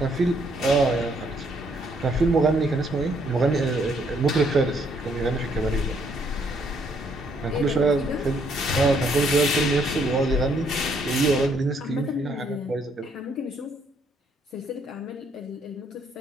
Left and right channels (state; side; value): normal; both; correlation 0.69